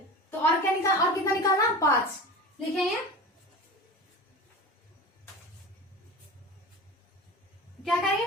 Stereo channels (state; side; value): normal; both; correlation 0.32